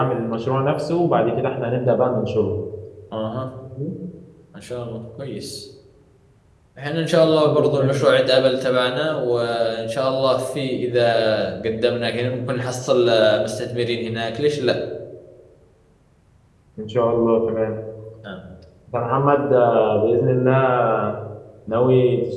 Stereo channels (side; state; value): both; identical; correlation 1.00